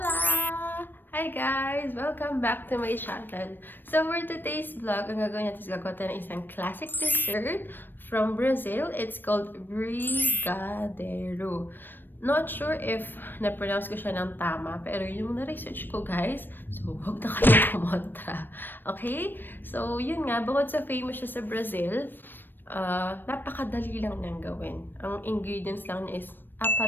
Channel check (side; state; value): right; late; 0.094 ms